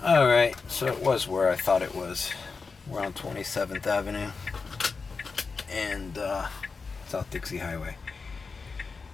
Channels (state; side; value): quieter; right; 4.7 dB